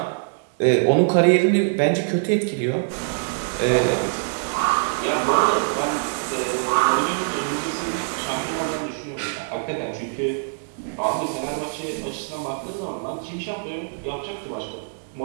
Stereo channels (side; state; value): left; silent; digital silence